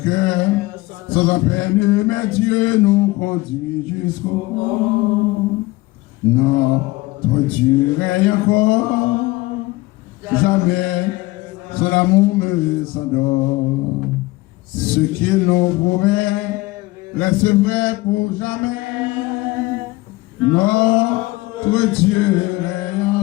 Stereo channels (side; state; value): right; quieter; 20.8 dB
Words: sans en peine, mais Dieu nous conduit jusqu'au bout. Notre Dieu règne encore, jamais son amour me s'endort. Ce qu'il nous promet reste vrai pour jamais. Notre Dieu règne